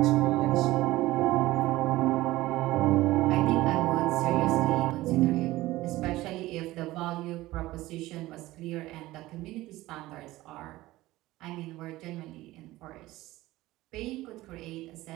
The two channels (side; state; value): left; quieter; 17.6 dB